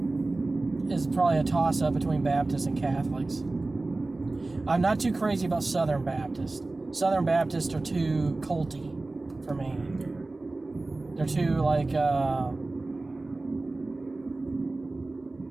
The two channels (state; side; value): quieter; left; 3.2 dB